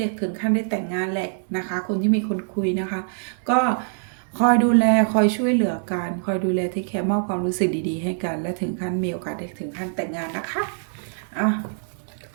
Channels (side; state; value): left; silent; digital silence